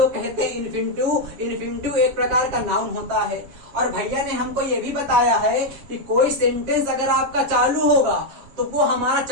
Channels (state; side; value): late; left; 7.3 ms